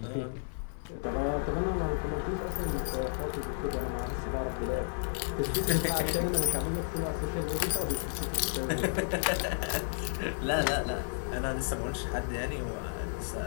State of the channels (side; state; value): right; silent; 56 dB below the other